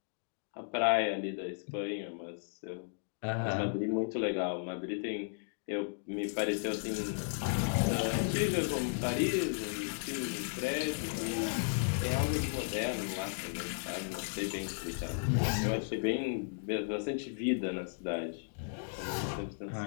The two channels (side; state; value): right; silent; digital silence